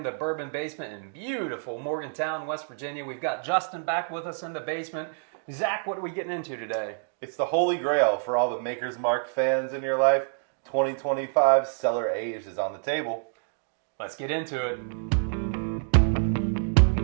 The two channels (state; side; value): silent; left; digital silence